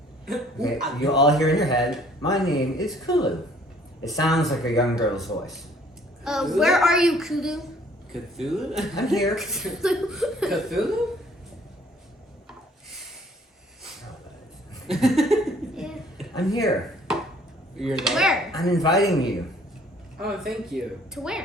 Okay, you all hear in your head, "My name is Kulu." It sounds like a young girl's voice. Where are you, Kudu? Cthulhu? I'm here. Cthulhu? Yeah. I'm here. You're there? Where? I'm inviting you. Oh, thank you. To where?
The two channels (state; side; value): normal; both; correlation 0.58